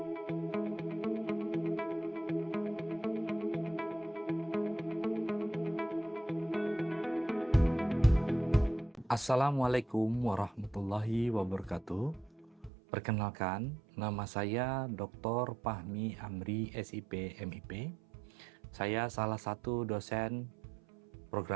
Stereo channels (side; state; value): left; drops out; at 12.7 s